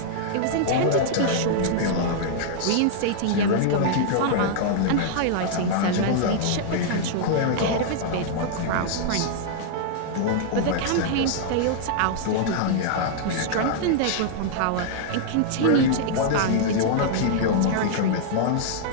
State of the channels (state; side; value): different; both; correlation -0.01